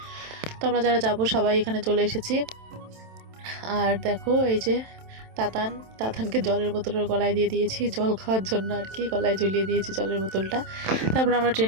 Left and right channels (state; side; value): late; left; 27 ms